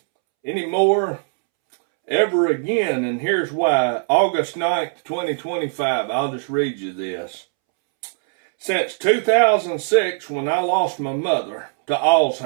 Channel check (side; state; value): left; silent; 65 dB below the other